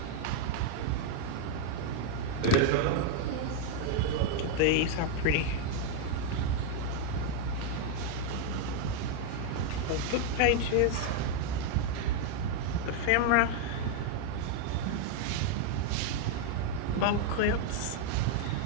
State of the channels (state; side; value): different; both; correlation 0.00